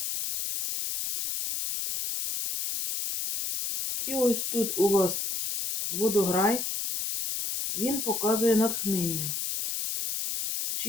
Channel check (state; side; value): noise; left; hiss, 3 dB below the sound